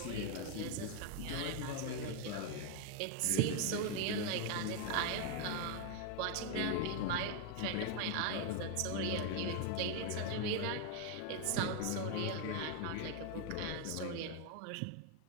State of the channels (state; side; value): different; both; correlation 0.01